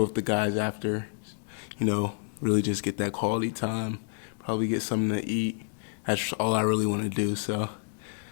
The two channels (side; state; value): right; silent; digital silence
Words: with the guys after, really just get that quality time, probably get something to eat. That's all I really want to do, so